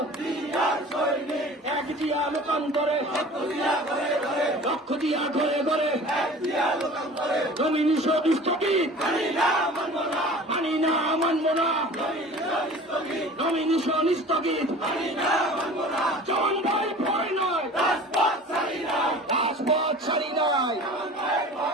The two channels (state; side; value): normal; both; correlation 0.42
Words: এক জিয়া লোকান্তরে, লক্ষ জিয়া ঘরে ঘরে, নমিনেশন স্থগিত, মানি না মানব না, নমিনেশন স্থগিত, চমন ভাই ভয় নয়, রাজপথ ছাড়ি নাই,